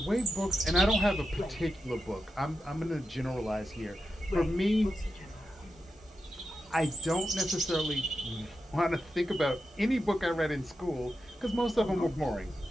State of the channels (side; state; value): both; normal; correlation 0.89